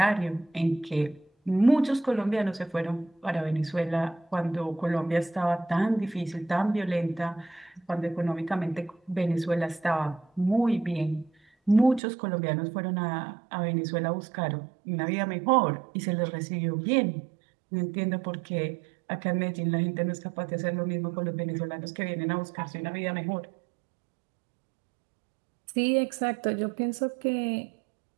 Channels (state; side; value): drops out; left; at 12.0 s